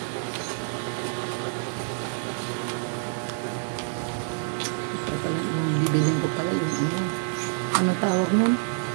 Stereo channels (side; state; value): left; silent; 60 dB below the other